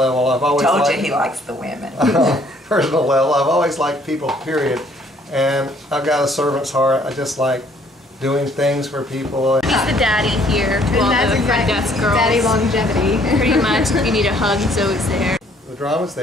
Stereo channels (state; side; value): normal; both; correlation 0.62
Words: I've always told liked, you he likes the women. On a personal level, I've always liked people, period. And I've got a servant's heart. I just like doing things for people. He's the daddy here to all the front desk girls. Daddy Longevity. Pretty much, if you need a hug, he's always there. The drama's